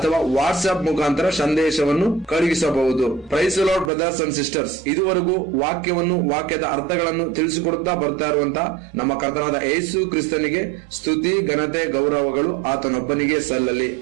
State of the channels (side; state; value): left; drops out; at 3.9 s